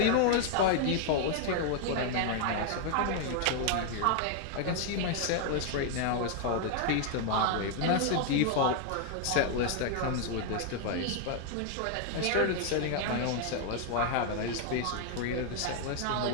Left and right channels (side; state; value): both; different; correlation 0.00